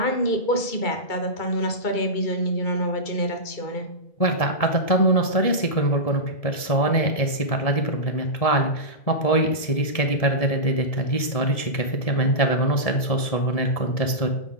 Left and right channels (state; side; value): late; right; 1.7 ms